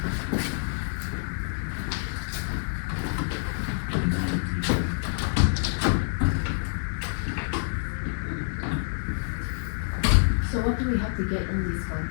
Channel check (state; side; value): silent; right; digital silence